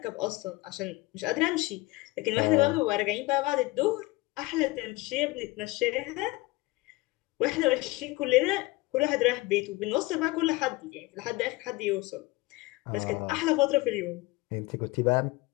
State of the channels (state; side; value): quieter; right; 21.5 dB